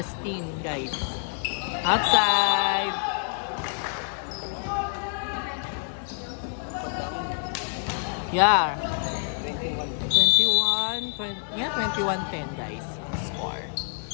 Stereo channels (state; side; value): silent; right; 60 dB below the other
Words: guys. Outside! Yeah. 21-10, guys. Score.